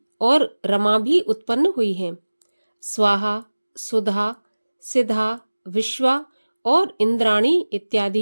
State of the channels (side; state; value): both; inverted; correlation -1.00